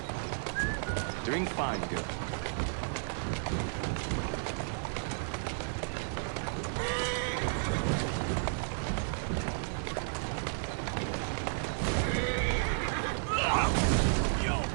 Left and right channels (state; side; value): silent; left; 56 dB below the other